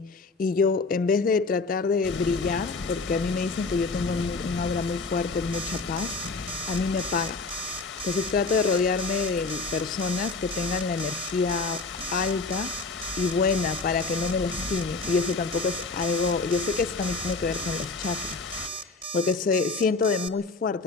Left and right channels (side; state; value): right; quieter; 3.9 dB